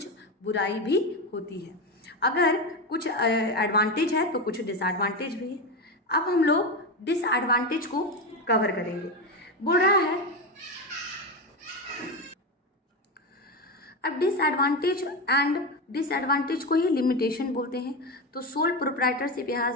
बुराई भी होती है। अगर कुछ एडवांटेज है तो कुछ डिसएडवांटेज भी है। अब हम लोग डिसएडवांटेज को कवर करेंगे। बोल रहा है अब डिसएडवांटेज एंड डिसएडवांटेज को ही लिमिटेशन बोलते हैं। तो सोल प्रोप्राइटरशिप, यहाँ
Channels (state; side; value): normal; both; correlation 0.16